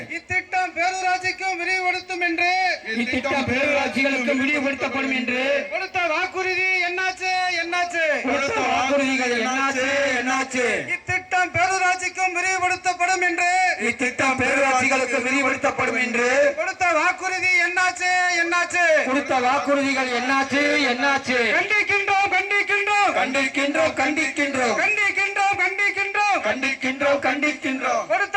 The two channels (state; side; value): identical; both; correlation 1.00